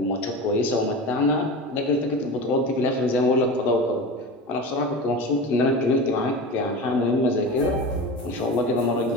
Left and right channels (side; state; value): both; normal; correlation 0.28